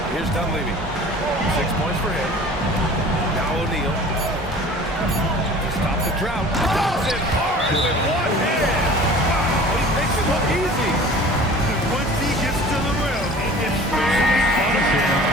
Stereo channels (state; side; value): normal; both; correlation 0.44